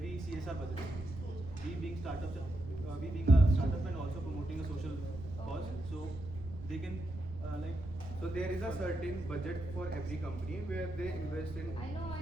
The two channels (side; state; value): right; noise; rumble, 12 dB below the sound